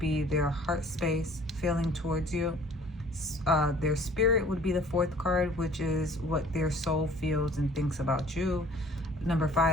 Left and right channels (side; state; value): both; normal; correlation 0.52